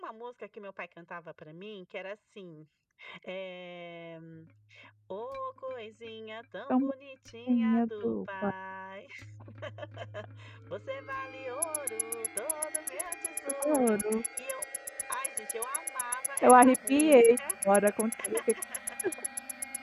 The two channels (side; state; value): both; identical; correlation 1.00